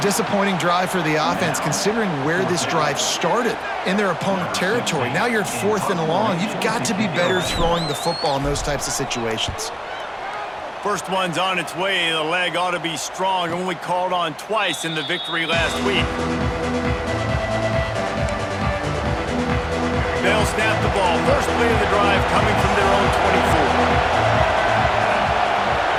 drive for the offense, considering where this drive started in their opponent territory. Now you're at 4th and long. You've got to be better throwing the football in those types of situations. First one's on its way. The leg ought to be strong. Only called on twice in the victory last week. They'll snap the ball. First play of the drive coming from their own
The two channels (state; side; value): identical; both; correlation 1.00